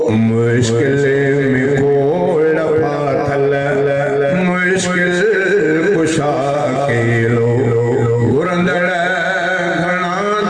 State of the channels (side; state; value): both; identical; correlation 1.00